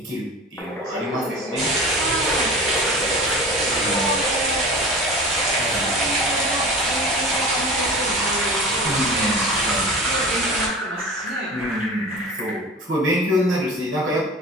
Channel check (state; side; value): normal; both; correlation 0.36